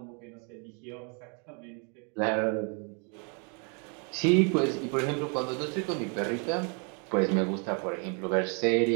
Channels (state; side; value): quieter; left; 37.2 dB